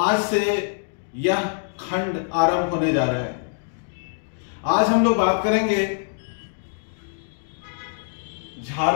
से यह खंड आरंभ होने जा रहा है। आज हम लोग बात करेंगे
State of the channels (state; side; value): silent; right; digital silence